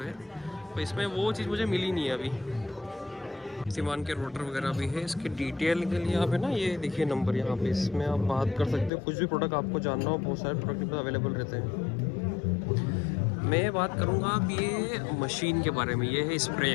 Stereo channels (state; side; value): drops out; right; at 8.9 s